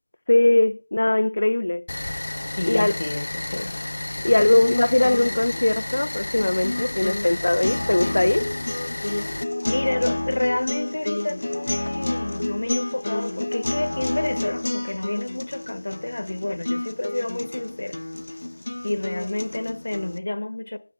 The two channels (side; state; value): both; inverted; correlation -1.00